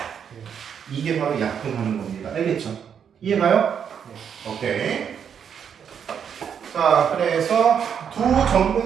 이게 바로 약분하는 겁니다. 알겠죠? 이해가요? 오케이. 자, 그래서 두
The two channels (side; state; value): left; quieter; 7.8 dB